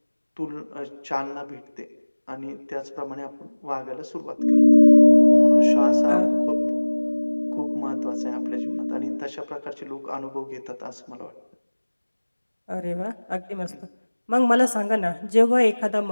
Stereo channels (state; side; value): inverted; both; correlation -1.00